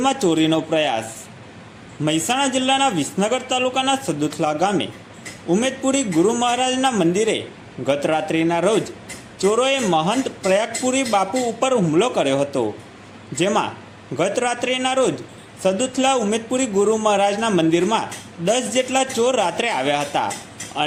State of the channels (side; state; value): both; identical; correlation 1.00